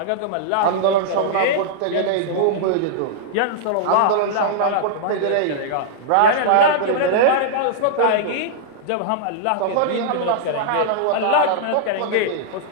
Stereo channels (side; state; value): both; different; correlation -0.01